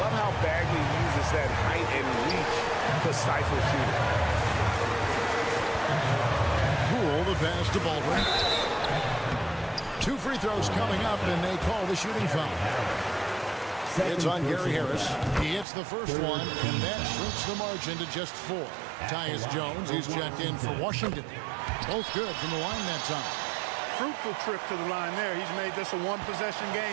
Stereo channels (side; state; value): left; drops out; at 15.7 s